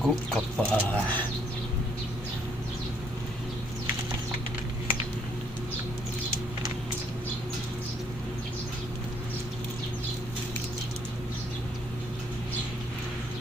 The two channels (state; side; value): normal; both; correlation 0.68